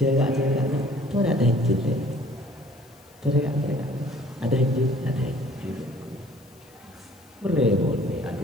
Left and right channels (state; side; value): noise; left; hiss, 29 dB below the sound